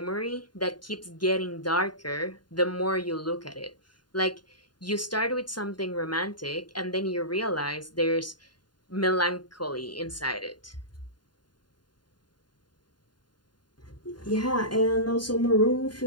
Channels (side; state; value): right; late; 0.71 ms